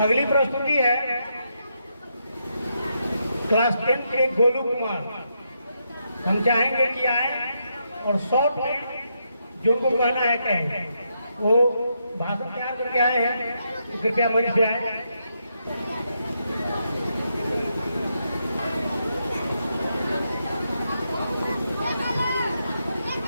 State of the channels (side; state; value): both; inverted; correlation -0.81